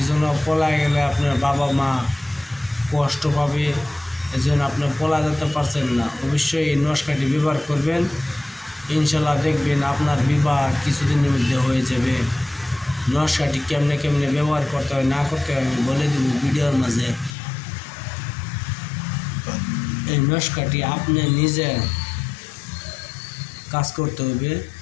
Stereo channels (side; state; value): right; drops out; at 17.3 s